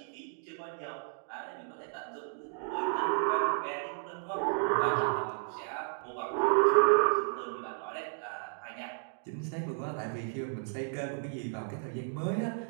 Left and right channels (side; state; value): left; silent; digital silence